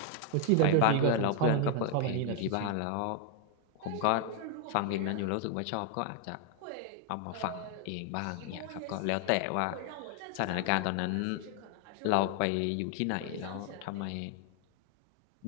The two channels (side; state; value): both; different; correlation 0.01